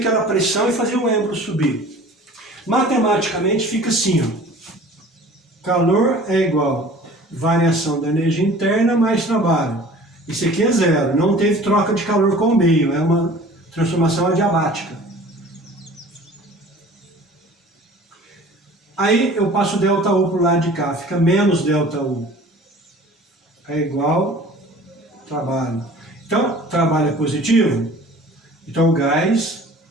pressão e fazer o êmbolo subir. Matematicamente fica assim, ó. Calor é igual a variação da energia interna mais trabalho. Isso aqui é zero, não teve troca de calor com o meio, é uma transformação adiabática. Aí eu passo ΔU para o lado de cá, fica menos ΔU. É igual trabalho. Então, trabalho é positivo. Então, o gás,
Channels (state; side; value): normal; both; correlation 0.46